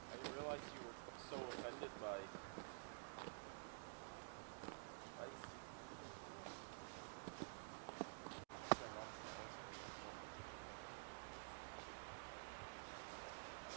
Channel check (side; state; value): left; silent; digital silence